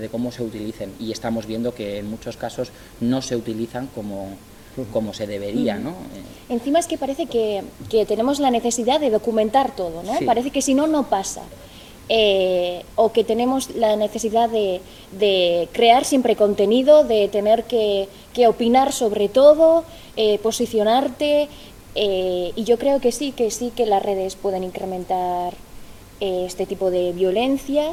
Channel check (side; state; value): both; identical; correlation 1.00